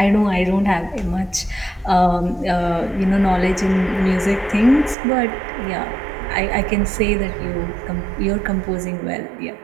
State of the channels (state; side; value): drops out; left; at 5.0 s